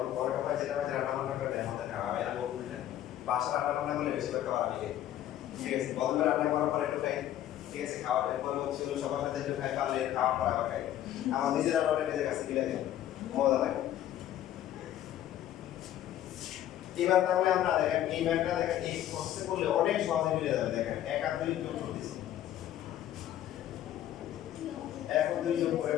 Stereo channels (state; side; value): quieter; right; 12.1 dB